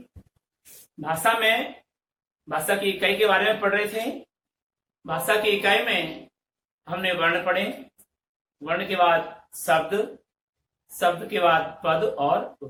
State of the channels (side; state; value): both; identical; correlation 1.00